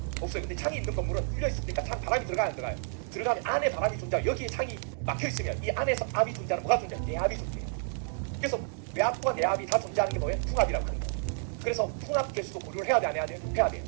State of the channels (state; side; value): silent; left; 58 dB below the other